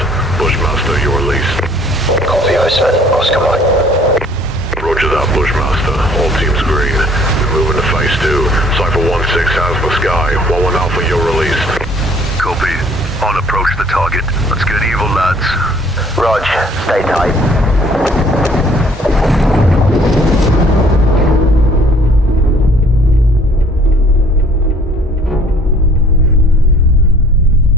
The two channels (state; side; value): normal; both; correlation 0.57